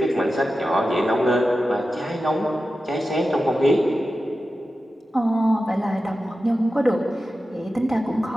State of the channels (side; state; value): both; normal; correlation 0.93